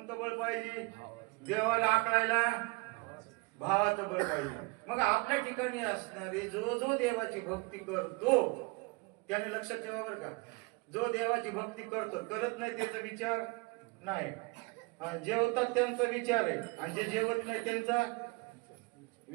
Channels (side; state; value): left; quieter; 27.8 dB